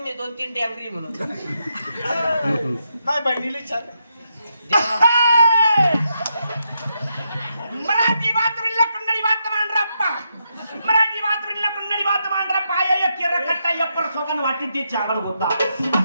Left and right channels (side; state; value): both; inverted; correlation -0.82